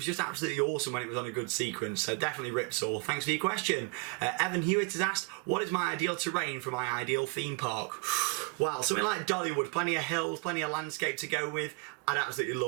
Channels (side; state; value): left; quieter; 31.8 dB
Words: just absolutely awesome when it was on a good sequence. So definitely Ripsaw. Thanks for your question. Evan Hewitt has asked, what is my ideal terrain for my ideal theme park? Well, something like Dollywood, plenty of hills, plenty of landscape to go with. I'd absolutely